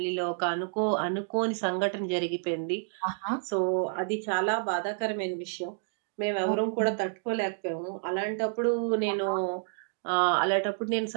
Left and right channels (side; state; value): left; silent; digital silence